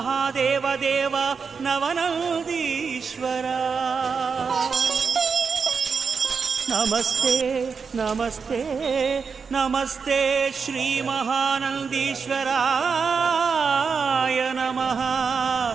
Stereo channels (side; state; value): left; quieter; 5.6 dB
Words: देव नवनंदीश्वरा नमस्ते नमस्ते नमस्ते श्री महानंदीश्वराय नमः।